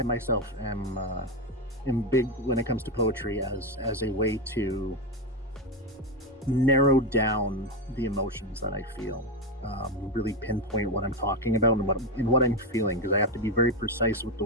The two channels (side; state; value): both; normal; correlation 0.10